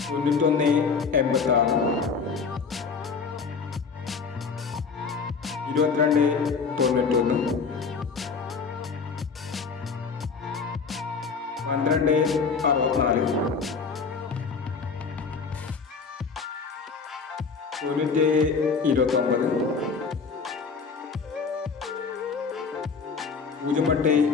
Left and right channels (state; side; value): quieter; right; 5.2 dB